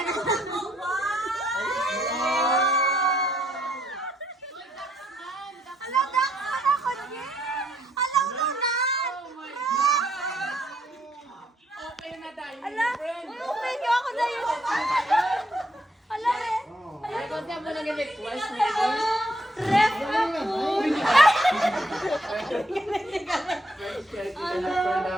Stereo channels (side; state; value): both; normal; correlation 0.72